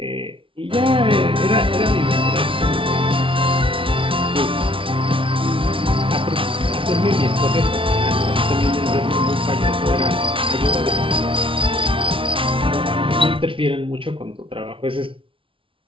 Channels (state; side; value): late; left; 0.25 ms